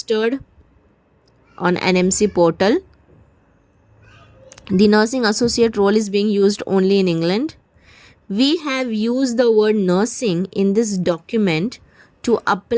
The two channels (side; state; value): both; identical; correlation 1.00